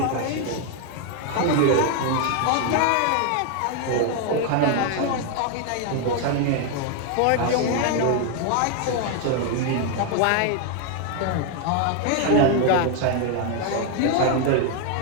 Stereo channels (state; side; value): different; both; correlation 0.01